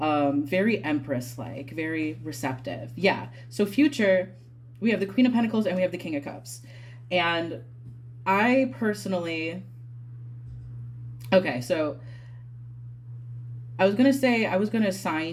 Very empress like, very receptive. Yeah. So future, we have the Queen of Pentacles and we have the King of Cups. And I personally, okay, so I was gonna say I was gonna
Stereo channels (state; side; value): identical; both; correlation 1.00